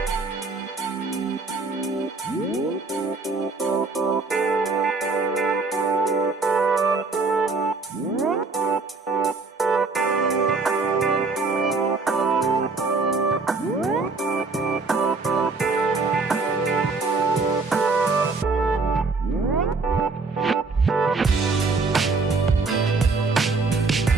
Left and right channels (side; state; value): left; quieter; 4.0 dB